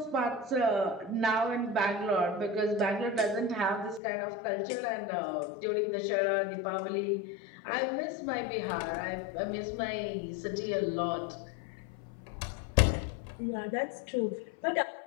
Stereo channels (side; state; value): right; drops out; at 4.0 s